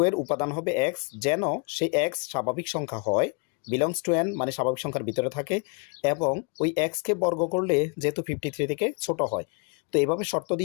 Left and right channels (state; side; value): quieter; right; 35.2 dB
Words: এর উপাদান হবে এক্স, যেন সেই এক্স স্বাভাবিক সংখ্যা হয়, বিলংস টু এন মানে স্বাভাবিক সংখ্যার ভিতরে থাকে, এবং ওই এক্সকে বর্গ করলে যেহেতু 53 থেকে ছোট হয়। তো এইভাবে শর্ত